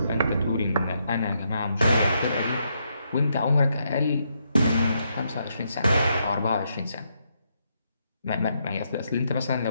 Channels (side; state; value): both; inverted; correlation -0.78